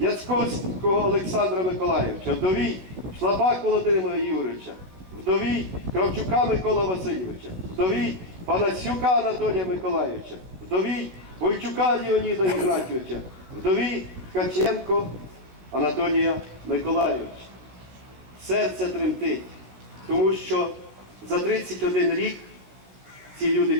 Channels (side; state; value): left; late; 16 ms